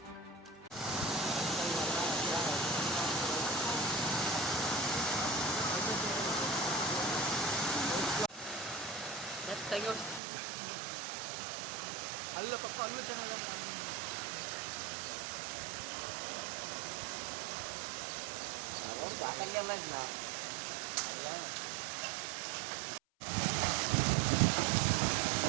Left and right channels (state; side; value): drops out; left; at 10.2 s